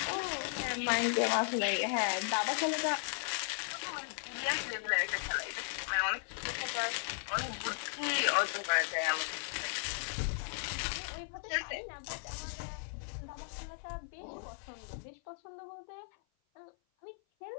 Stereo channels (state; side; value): silent; right; 54 dB below the other